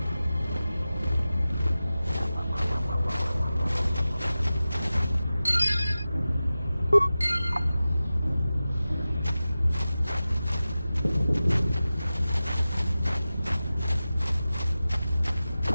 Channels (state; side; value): inverted; both; correlation -0.95